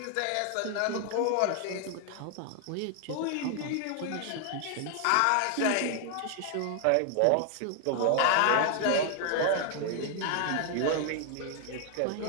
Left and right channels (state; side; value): different; both; correlation 0.00